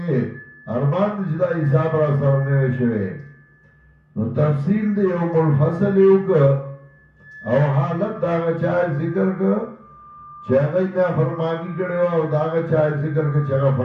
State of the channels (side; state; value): both; identical; correlation 1.00